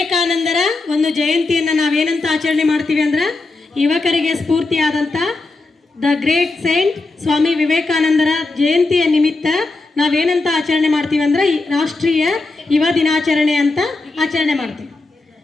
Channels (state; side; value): quieter; right; 3.4 dB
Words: ಒಂದು ಜಯಂತಿಯನ್ನು ನಾವೇನಂತ ಆಚರಣೆ ಮಾಡ್ತೀವಿ ಅಂದ್ರೆ, ಯುವಕರಿಗೆ ಸ್ಫೂರ್ತಿಯಾದಂಥ ದ ಗ್ರೇಟ್ ಸೈಂಟ್ ಸ್ವಾಮಿ ವಿವೇಕಾನಂದರ ಜಯಂತಿಯ ನಿಮಿತ್ತ ನಾವೇನಂತ ಆಚರಣೆ ಮಾಡ್ತೀವಿ ಅಂದ್ರೆ ರಾಷ್ಟ್ರೀಯ ಯುವ ದಿನಾಚರಣೆ ಅಂತ ಆಚರಣೆ ಮಾಡ್ತೀವಿ.